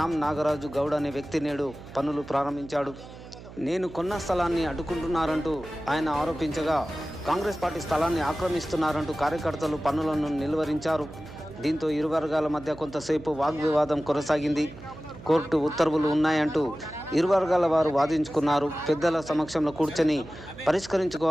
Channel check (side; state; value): right; noise; hum, 16 dB below the sound